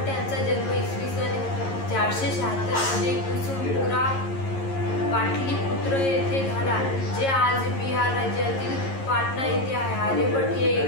यांचा जन्म इसवी सन 476 मध्ये कुसुमपुरा पाटलीपुत्र येथे झाला, जे आज बिहार राज्यातील पाटणा येथे आहे। आर्यभट्ट हे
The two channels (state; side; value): late; right; 11 ms